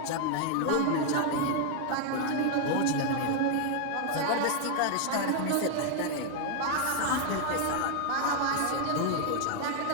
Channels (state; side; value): different; both; correlation 0.00